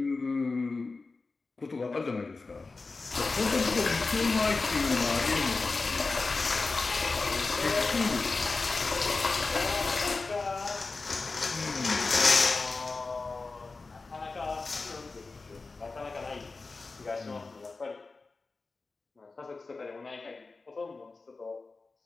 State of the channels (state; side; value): quieter; right; 3.9 dB